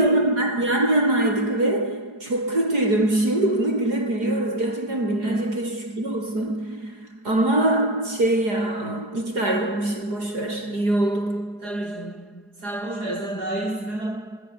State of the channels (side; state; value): left; late; 4.8 ms